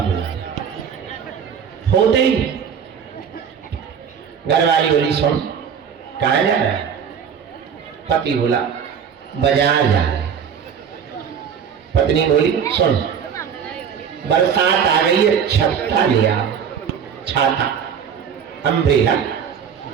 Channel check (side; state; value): left; quieter; 7.5 dB